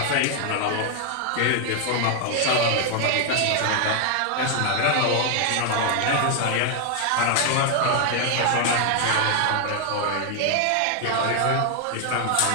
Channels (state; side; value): different; both; correlation 0.00